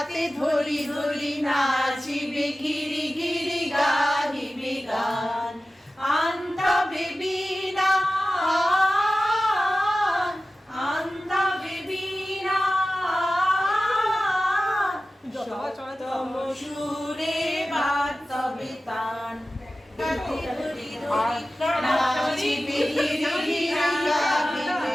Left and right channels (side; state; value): both; normal; correlation 0.95